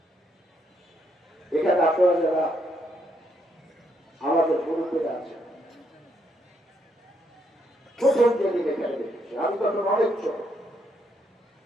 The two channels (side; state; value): both; normal; correlation 0.75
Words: এখানে আপনারা যারা আমাদের মুরব্বীরা আছেন, প্রথম যেদিন এখানে দেখেছি, আমি তখন অনেক ছোট।